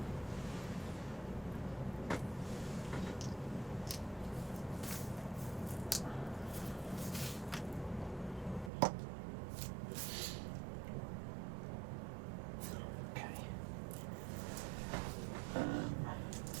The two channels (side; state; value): left; drops out; at 8.7 s